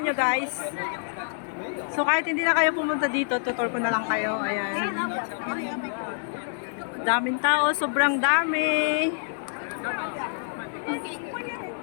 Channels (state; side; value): silent; right; digital silence